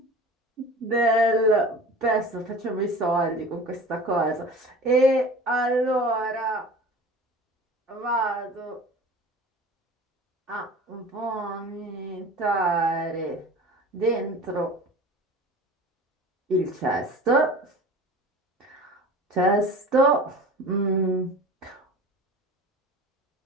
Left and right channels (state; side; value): normal; both; correlation 0.39